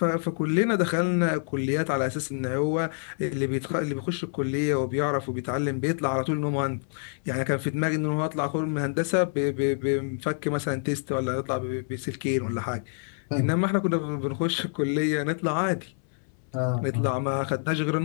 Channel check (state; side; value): silent; right; 60 dB below the other